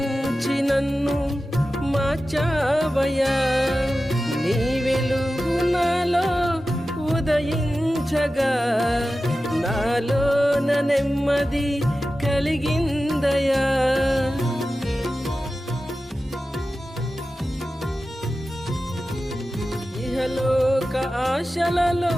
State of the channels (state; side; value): normal; both; correlation 0.94